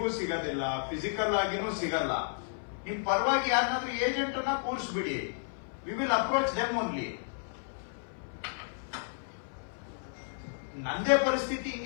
ಸಿಗೋದಿಲ್ಲ, ಫಿಸಿಕಲ್ ಆಗಿನೂ ಸಿಗಲ್ಲ. ನಿಮ್ ಪರವಾಗಿ ಯಾರನ್ನಾದ್ರೂ ಏಜೆಂಟ್ ಅನ್ನ ಕೂರಿಸ್ಬಿಡಿ. We will approach them only. ನಂದೇ ಪರಿಸ್ಥಿತಿ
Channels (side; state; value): right; silent; 56 dB below the other